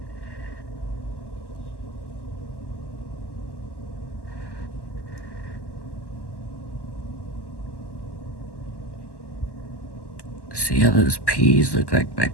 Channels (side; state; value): right; late; 1.1 ms